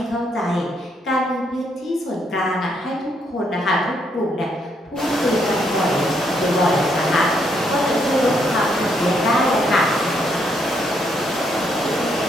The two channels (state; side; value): normal; both; correlation 0.74